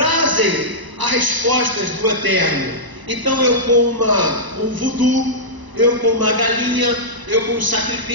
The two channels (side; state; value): left; late; 1.0 ms